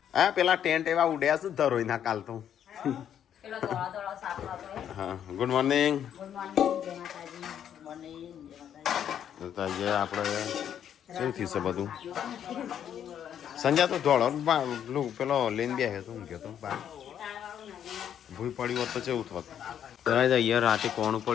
આ પેલા ટેન્ટ એવા ઉડ્યા છે ધરોઈ ના કાલ તો પેલો ધોળા ધોળા સાપ હતો એ. હા ગુડ મોર્નિંગ ગુડ મોર્નિંગ જય માતાજી. મોર્નિંગ જય માતાજી. તો આજે આપણે શું થયું છે બધું સંજય તો ધોળો પેલો લઈને બે તું કહેતો બા ભૂલ પડી હોત તો કેવું થોત અહીંયા રાતે કોણ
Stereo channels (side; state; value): right; quieter; 9.5 dB